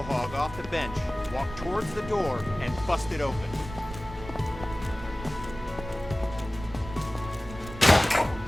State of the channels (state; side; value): noise; right; rumble, 13 dB below the sound